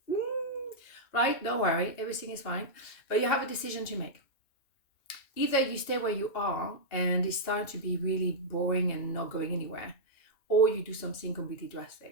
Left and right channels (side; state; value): right; late; 2.7 ms